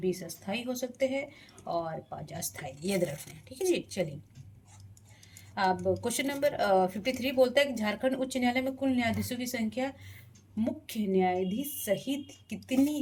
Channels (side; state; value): both; identical; correlation 1.00